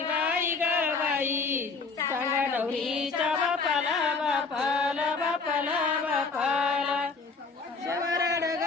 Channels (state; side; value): quieter; right; 4.4 dB